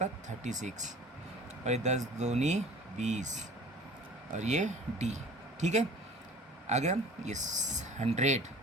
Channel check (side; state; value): both; normal; correlation 0.46